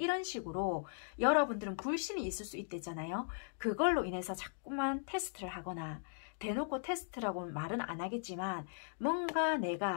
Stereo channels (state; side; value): silent; right; digital silence